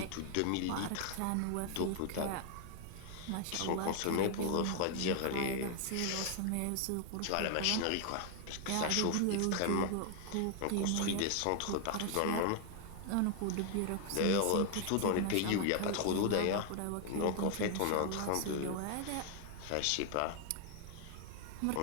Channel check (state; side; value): different; both; correlation 0.00